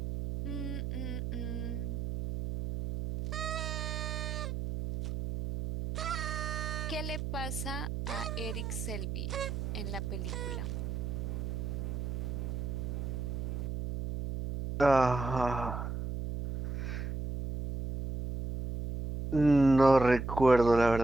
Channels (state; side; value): noise; right; hum, 4 dB below the sound